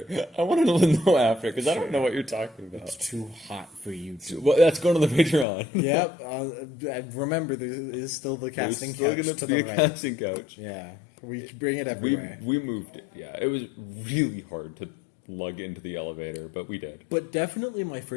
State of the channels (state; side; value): drops out; right; at 5.5 s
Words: I want to know after because I don't know what you're talking It's about. too hot for you to. Well, that's going to the Patreon. Yep. Remember, there is still the casting There's still couch going to to be the a right. casting couch. Yeah, we bring it everywhere. We moved it. Yeah, it was really hard to lug into the elevator, but we did. But definitely my